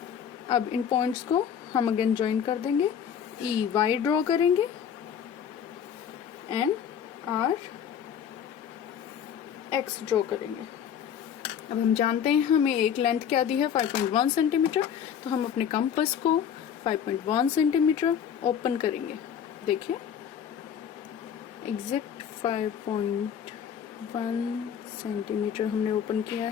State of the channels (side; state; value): right; quieter; 8.3 dB